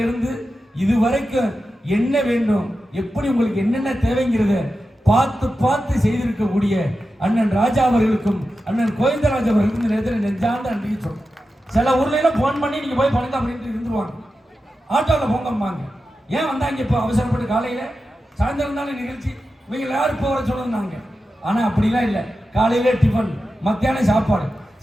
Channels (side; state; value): both; normal; correlation 0.91